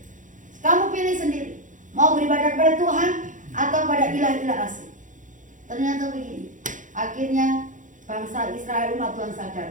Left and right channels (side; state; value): left; late; 0.37 ms